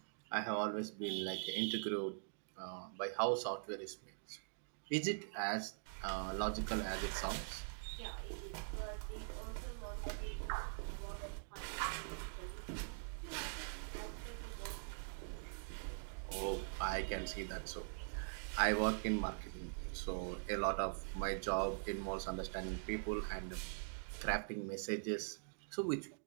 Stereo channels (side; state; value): left; silent; digital silence